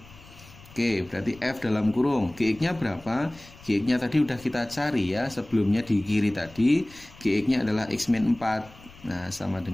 Oke, berarti F dalam kurung Gx-nya berapa? Gx-nya tadi udah kita cari ya, sebelumnya di kiri tadi Gx-nya adalah x min 4. Nah, sama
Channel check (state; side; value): noise; left; rumble, 22 dB below the sound